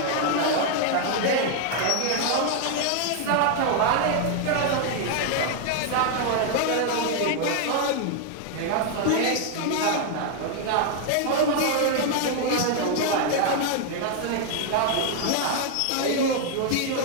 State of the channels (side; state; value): both; different; correlation 0.00